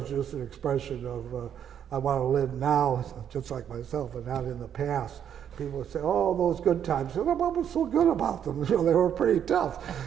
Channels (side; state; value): left; quieter; 9.1 dB